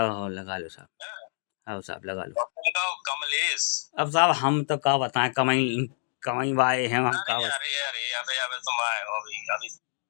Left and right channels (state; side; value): silent; right; 60 dB below the other